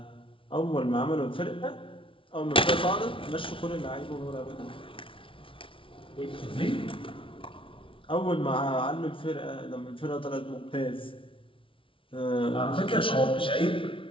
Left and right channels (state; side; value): late; right; 0.25 ms